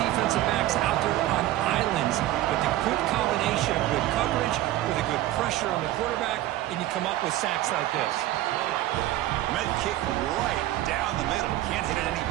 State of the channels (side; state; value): left; quieter; 15.0 dB